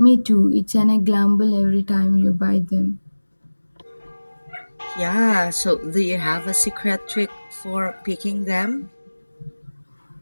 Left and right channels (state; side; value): inverted; both; correlation -1.00